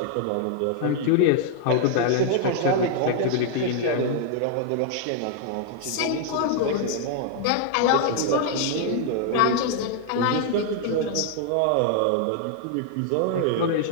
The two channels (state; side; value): different; both; correlation 0.00